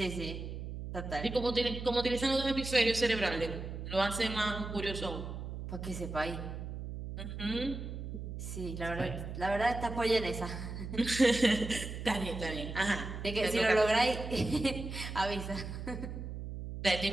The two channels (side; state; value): right; noise; hum, 7 dB below the sound